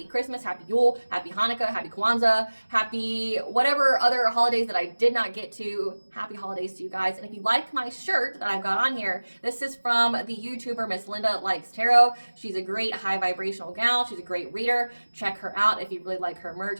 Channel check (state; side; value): inverted; both; correlation -1.00